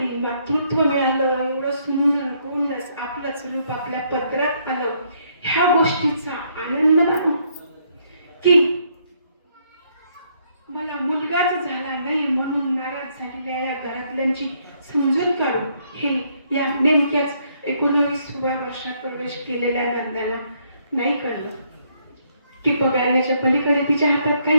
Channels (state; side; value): inverted; both; correlation -0.71